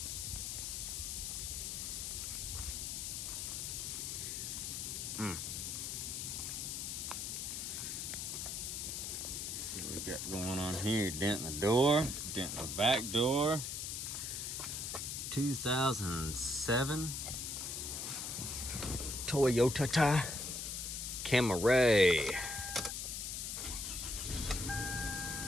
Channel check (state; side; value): noise; left; hiss, 4 dB below the sound